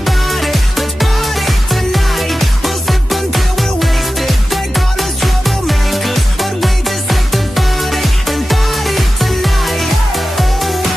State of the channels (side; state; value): both; normal; correlation 0.94